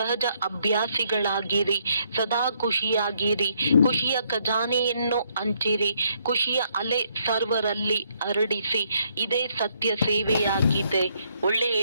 ಅಭ್ಯಾಸಿಗಳಾಗಿರಿ. ಸದಾ ಖುಷಿಯಾಗಿರಿ. ಖುಷಿಯ ಖಜಾನೆಯನ್ನು ಹಂಚಿರಿ. ಖುಷಿಯ ಅಲೆ ಸರ್ವರಲ್ಲಿ ಹರಡಿಸಿ. ಇದೇ ಸತ್ಯ ಸೇವೆಯಾಗಿದೆ.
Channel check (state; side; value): inverted; both; correlation -0.72